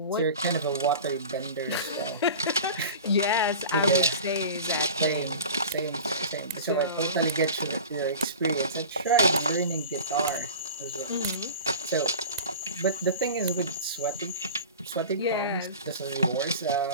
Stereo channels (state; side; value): inverted; both; correlation -0.36